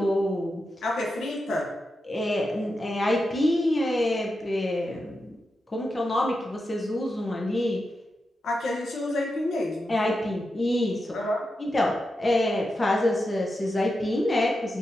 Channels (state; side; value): normal; both; correlation 0.88